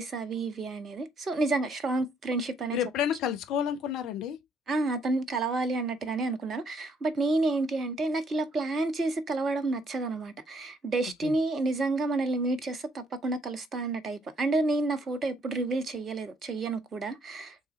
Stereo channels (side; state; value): both; normal; correlation 0.68